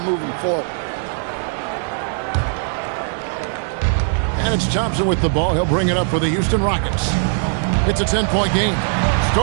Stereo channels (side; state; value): left; silent; 66 dB below the other